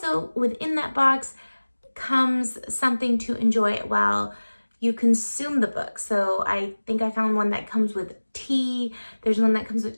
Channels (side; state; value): both; inverted; correlation -1.00